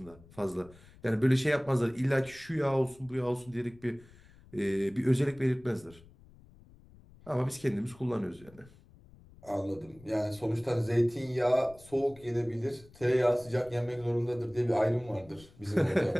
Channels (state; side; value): noise; left; rumble, 24 dB below the sound